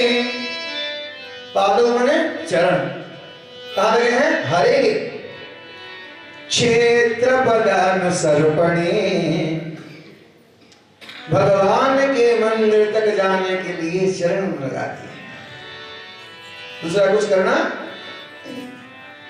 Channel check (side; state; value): both; identical; correlation 1.00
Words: पादों माने चरण, कहाँ लगे हैं? हरे के। क्षेत्र पदानुसर्पणे, भगवान के मंदिर तक जाने के लिए चरण लगाती है। दूसरा कुछ करना।